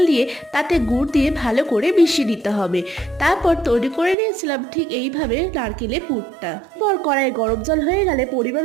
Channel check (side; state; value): left; drops out; at 4.2 s